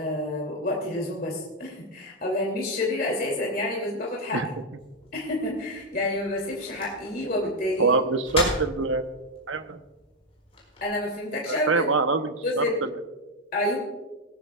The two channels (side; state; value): both; normal; correlation 0.04